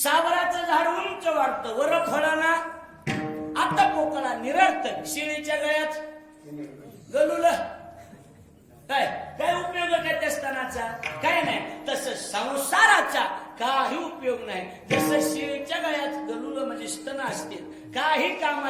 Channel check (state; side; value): identical; both; correlation 1.00